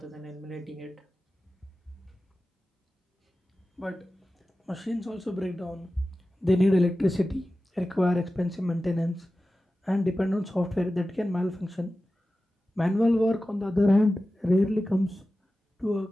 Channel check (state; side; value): normal; both; correlation 0.94